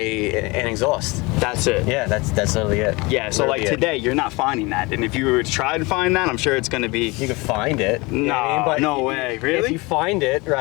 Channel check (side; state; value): right; quieter; 24.9 dB